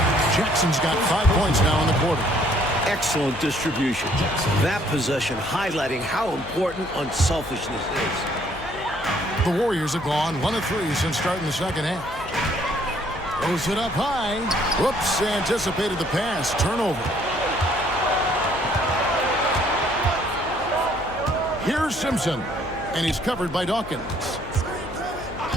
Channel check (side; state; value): left; noise; hum, 16 dB below the sound